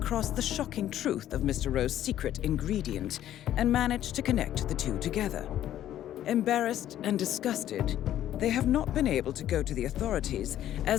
the shocking truth of Mr. Rowe's secret ingredient and managed to connect the two together. Embarrassed and disgusted, they have not been able to go to the authorities,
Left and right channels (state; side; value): quieter; right; 12.0 dB